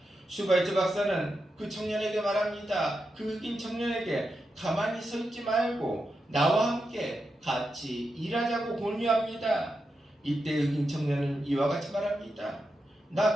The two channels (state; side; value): normal; both; correlation 0.87